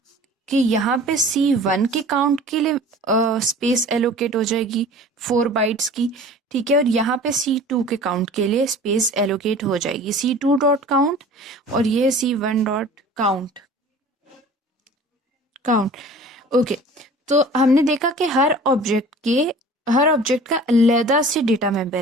कि यहाँ पे C1 के काउंट के लिए स्पेस एलोकेट हो जाएगी 4 बाइट्स की। ठीक है, और यहाँ पे C2 के काउंट के लिए स्पेस एलोकेट हो जाएगी C2 डॉट काउंट, और ये C1 dot count count. Okay, तो हमने देखा कि हर ऑब्जेक्ट का अलग से डेटा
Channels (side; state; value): both; normal; correlation 0.44